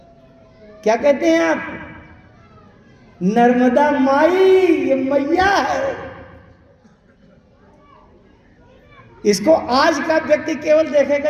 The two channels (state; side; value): identical; both; correlation 1.00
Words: क्या कहते हैं आप? नर्मदा माई, ये मैया है। इसको आज का व्यक्ति केवल देखेगा